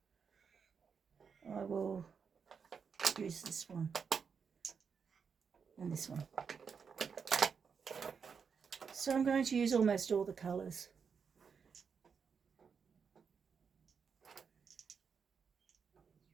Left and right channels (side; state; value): left; quieter; 6.2 dB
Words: I will use this one and this one. So I'm going to use almost all the colours.